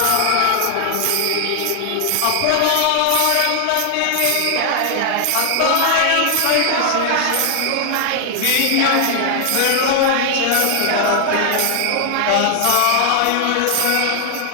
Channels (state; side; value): different; both; correlation 0.00